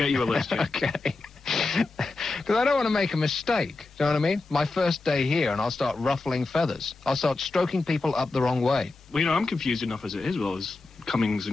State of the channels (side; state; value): right; quieter; 3.5 dB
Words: you a list, yeah. Okay. Because I don't want to make a mistake. Do you know what I mean? My first day here, and I'll start ruffling feathers. I'll start stroking people up the wrong way. Well, you know, I'm confused enough as it is, well, as comings